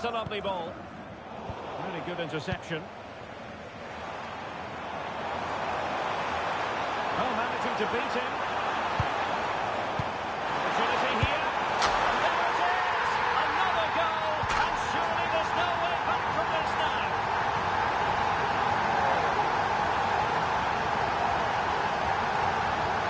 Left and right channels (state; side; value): identical; both; correlation 1.00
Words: a lovely ball. Really good interception. Oh, managing to beat him. Opportunity here. And there it is! Another goal! And surely there's no way back from this now.